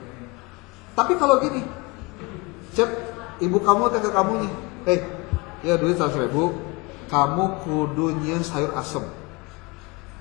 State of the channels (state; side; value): quieter; right; 25.8 dB